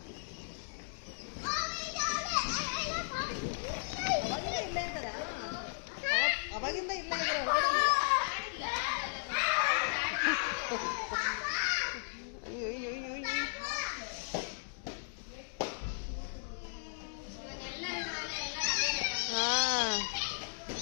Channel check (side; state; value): right; silent; digital silence